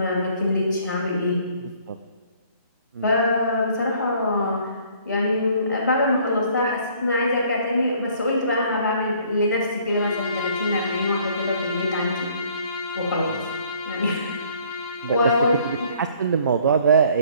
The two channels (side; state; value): both; inverted; correlation -0.59